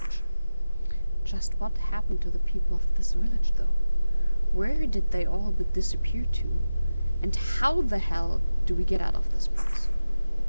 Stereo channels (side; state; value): both; inverted; correlation -0.94